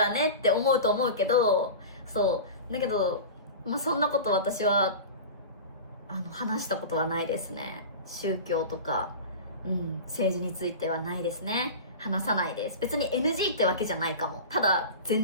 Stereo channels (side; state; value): both; inverted; correlation -0.31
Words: ねって思うと思うけど、そう。だけど、そんなこと私は、話したことはないですね。宗教とか、政治についてはないですね。話さないです。別に NG ってわけじゃないかも。ただ、